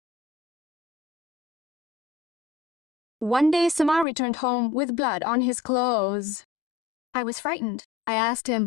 One day, Samar returned home with blood on his clothes. I was frightened. I asked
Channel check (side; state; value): right; drops out; at 4.0 s